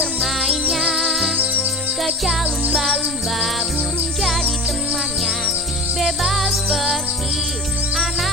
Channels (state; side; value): normal; both; correlation 0.32